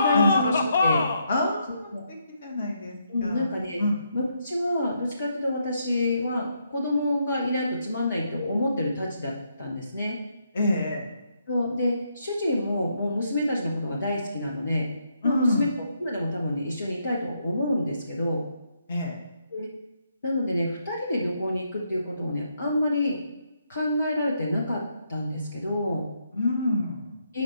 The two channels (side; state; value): both; inverted; correlation -0.77